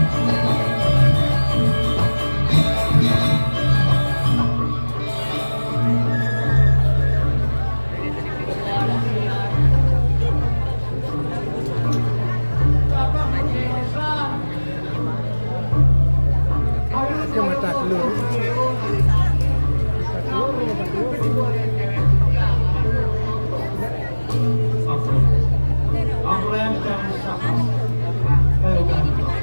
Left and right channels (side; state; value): both; inverted; correlation -1.00